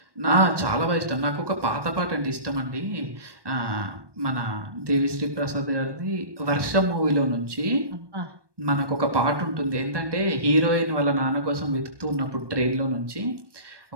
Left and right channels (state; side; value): late; left; 1.2 ms